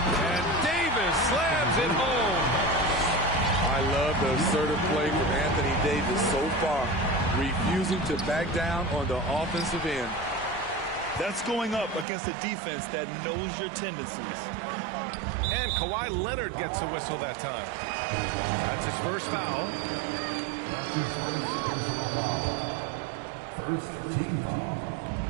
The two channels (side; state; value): left; drops out; at 12.1 s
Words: Davis slams it home. I love the assertive play from Anthony Davis so far, refusing to back down on the offensive end. That's going up against a defense that knows your tendencies. And Kawhi Leonard gets a whistle that time. That's his first foul. That's his first personal foul. First team foul.